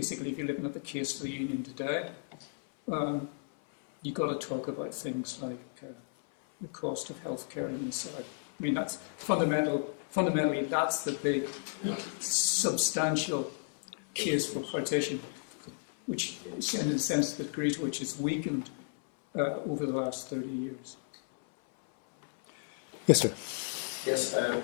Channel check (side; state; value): right; silent; 56 dB below the other